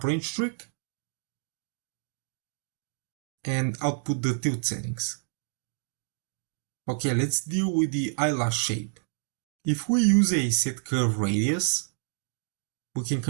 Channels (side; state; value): left; silent; digital silence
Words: range trick and output the tilt settings. Okay, let's deal with the eyelash shape. If we use a set curve radius, we can